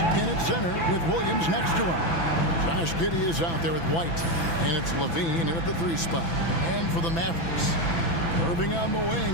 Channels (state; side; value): late; right; 6.0 ms